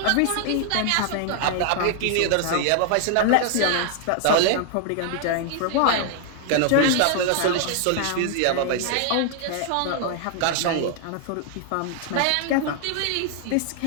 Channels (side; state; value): both; different; correlation 0.00